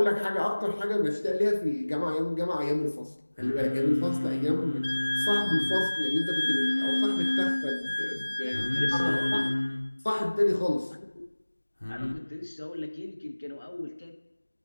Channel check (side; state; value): both; inverted; correlation -1.00